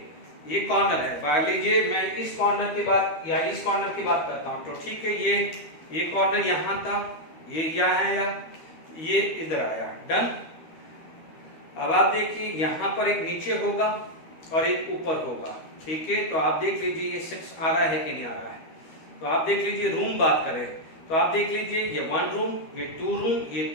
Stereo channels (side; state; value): right; late; 13 ms